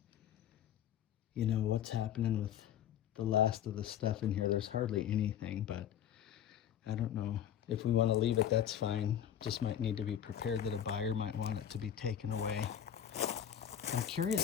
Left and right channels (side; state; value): right; quieter; 9.9 dB